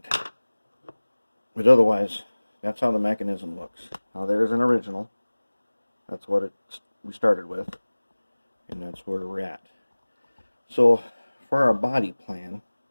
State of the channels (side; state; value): both; inverted; correlation -1.00